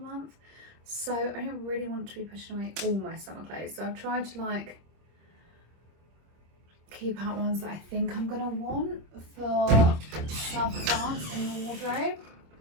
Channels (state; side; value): late; left; 26 ms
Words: so I don't really want to be pushing away all my summer clothes. So I've tried to like keep out ones that I think I'm gonna want for South of France in the wardrobe.